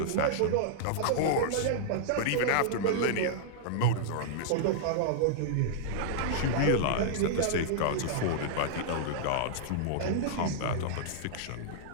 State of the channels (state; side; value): different; both; correlation -0.02